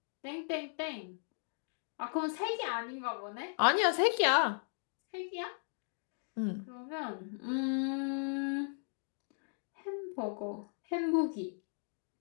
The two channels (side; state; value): right; silent; digital silence